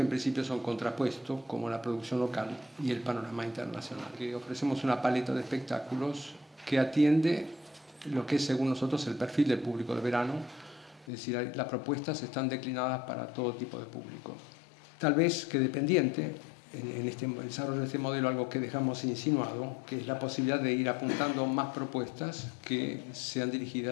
en principio son contrapuestos, como la producción local y el panorama internacional. Que ofrecemos una paleta de espectáculos que atiende lo que es, según nosotros, el perfil del público de verano, es decir, las propuestas están declinadas para todo tipo de público. Tal vez que dependiente en este desarrollo de este modelo algo que dejamos insinuado, que es la posibilidad de ir apuntando más propuestas que sean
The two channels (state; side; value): drops out; right; at 11.1 s